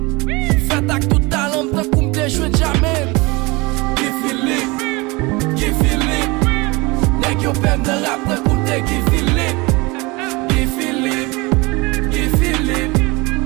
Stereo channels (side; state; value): left; quieter; 24.9 dB